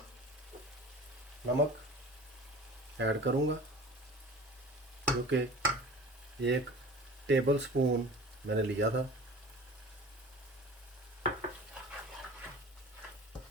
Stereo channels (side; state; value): both; normal; correlation 0.40